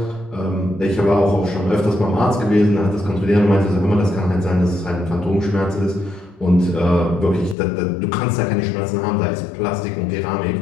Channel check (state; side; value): drops out; right; at 7.6 s